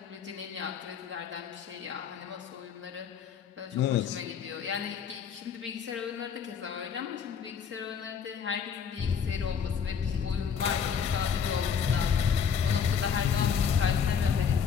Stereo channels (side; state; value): right; quieter; 7.1 dB